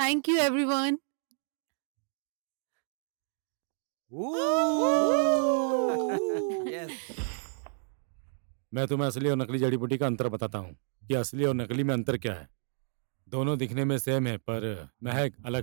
you everyone. मैं तुम्हें असली और नकली जड़ी बूटी का अंतर बताता हूँ कि असली और नकली में अंतर क्या है। दोनों दिखने में सेम है पर महक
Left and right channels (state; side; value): silent; left; digital silence